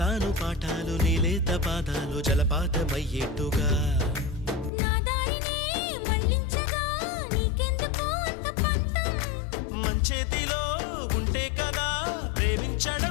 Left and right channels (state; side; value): drops out; right; at 4.7 s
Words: చెబుతాను పాఠాలు నీలేత పాదాలు జలపాతమయ్యేట్టుగా నా దారినే మళ్ళించగా నీకెందుకు అంత పంతం మంచేతిలో ఉంటే కదా